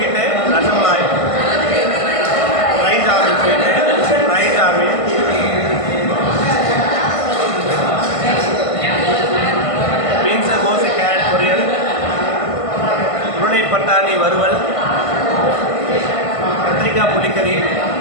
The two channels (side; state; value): right; late; 1.5 ms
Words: fry jamun, beans கோஸ் கேரட் பொரியல், உருளை பட்டாணி வறுவல், கத்திரிக்காய் புளிக்கறி,